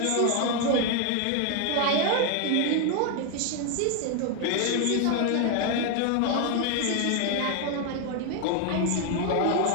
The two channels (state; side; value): different; both; correlation 0.01